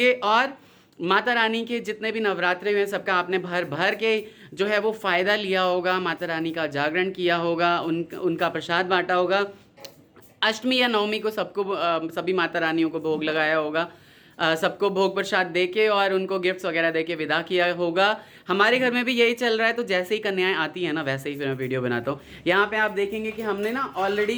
और माता रानी के जितने भी नवरात्रे हुए सबका आपने भर भर के जो है वो फ़ायदा लिया होगा, माता रानी का जागरण किया होगा, उनका प्रसाद बांटा होगा। अष्टमी या नवमी को सबको सभी माता रानियों को भोग लगाया होगा, सबको भोग प्रसाद दे के और उनको गिफ्ट्स वगैरह दे के विदा किया होगा। हमारे घर में भी यही चल रहा है। तो जैसे ही कन्याएं आती हैं ना, वैसे ही फिर मैं वीडियो बनाता हूँ। यहाँ पे आप देखेंगे कि हमने ना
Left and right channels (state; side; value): identical; both; correlation 1.00